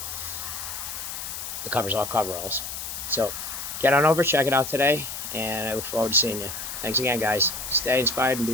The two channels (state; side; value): noise; left; hiss, 7 dB below the sound